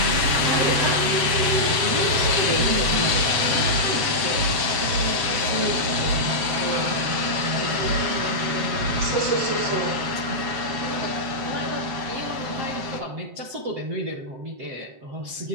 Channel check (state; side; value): late; left; 7.8 ms